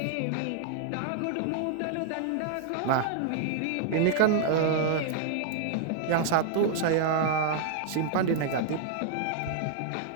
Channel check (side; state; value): both; different; correlation -0.01